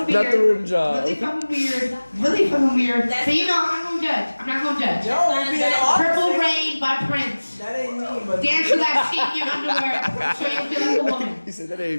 weird. Not the rim job. Really fucking weird. Really fucking weird. That's- So you know, I'm not gonna judge. I'm not gonna judge. Don't be an officer. Purple Rain by Prince. That ain't me, but Dance to that shit in your underwear so you'll feel like a woman. He said that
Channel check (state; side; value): inverted; both; correlation -1.00